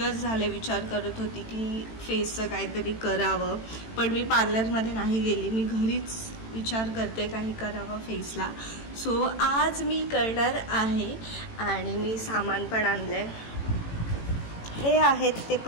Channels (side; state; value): right; late; 18 ms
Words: झाले विचार करत होती की फेसचं काहीतरी करावं. पण मी पार्लरमध्ये नाही गेली, मी घरीच विचार करते काही करावं फेसला. सो आज मी करणार आहे आणि मी सामान पण आणले. हे आहेत ते